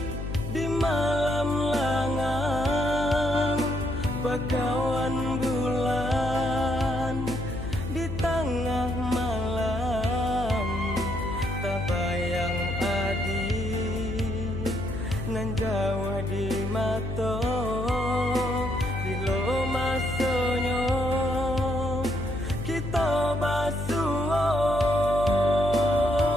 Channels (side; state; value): left; noise; hum, 6 dB below the sound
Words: di malam langang bakawan bulan di tengah malam tak bayang adik nan jauh di mata bilo masanya kita basuh